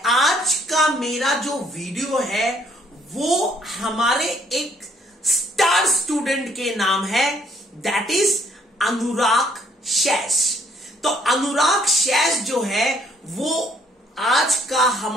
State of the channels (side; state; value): both; normal; correlation 0.65